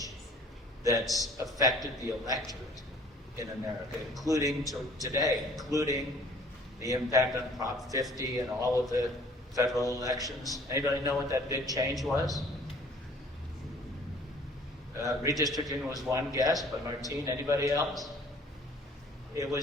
that's affected the electorate in America, including today, including the impact on Prop 50 and all of the federal elections? Anybody know what that big change was? Redistricting was one guess, but Martine, anybody else? It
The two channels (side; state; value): both; normal; correlation 0.54